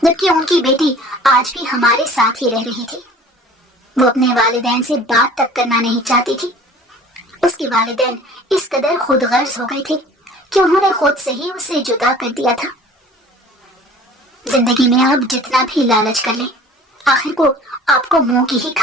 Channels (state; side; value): normal; both; correlation 0.47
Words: جبکہ ان کی بیٹی آج بھی ہمارے ساتھ ہی رہ رہی تھی۔ وہ اپنے والدین سے بات تک کرنا نہیں چاہتی تھی۔ اس کے والدین اس قدر خود غرض ہو گئے تھے کہ انہوں نے خود سے ہی اسے جدا کر دیا تھا۔ زندگی میں آپ جتنا بھی لالچ کر لیں، آخر کو آپ کو منہ کی ہی